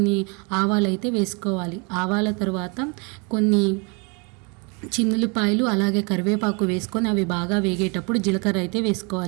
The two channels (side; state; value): left; quieter; 32.4 dB